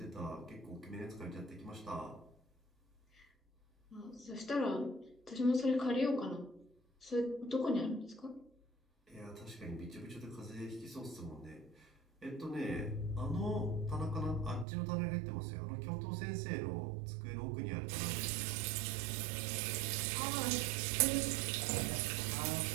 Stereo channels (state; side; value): drops out; left; at 14.7 s